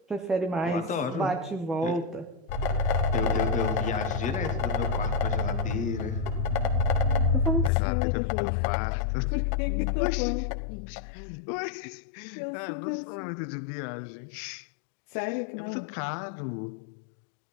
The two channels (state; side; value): drops out; right; at 7.7 s